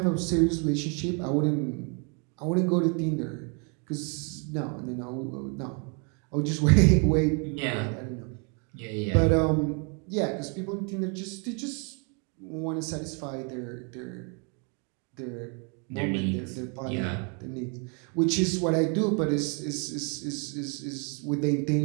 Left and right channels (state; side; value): quieter; left; 36.7 dB